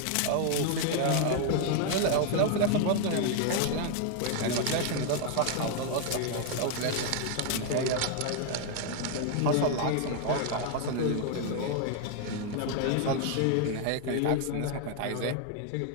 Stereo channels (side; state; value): both; different; correlation 0.00